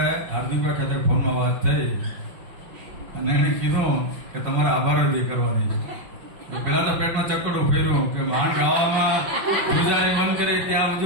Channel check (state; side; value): late; left; 5.3 ms